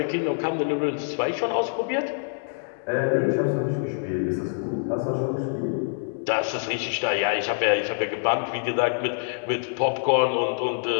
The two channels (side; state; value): right; silent; digital silence